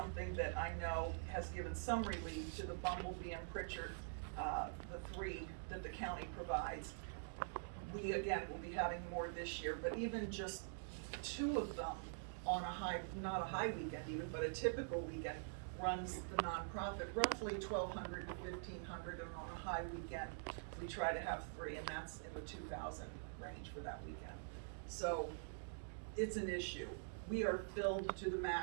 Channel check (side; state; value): left; silent; digital silence